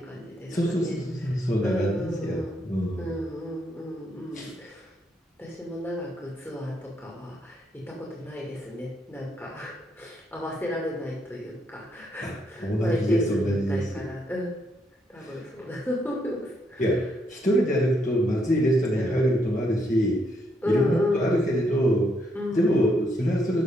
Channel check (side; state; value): both; normal; correlation 0.76